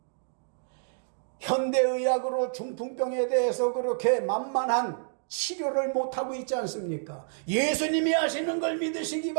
현대의학으로 중풍병에 대해서 그렇게 만만한 치료를 못하고 있지 않습니까? 예수님이 하시는 걸 믿으시기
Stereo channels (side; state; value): left; silent; digital silence